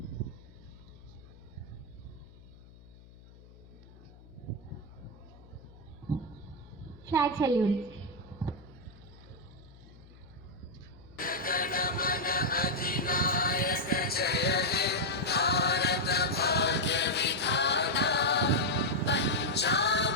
Flag salute. गणमन अधिनायक जय हे भारत भाग्य विधाता पंजाब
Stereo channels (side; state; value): left; noise; hum, 22 dB below the sound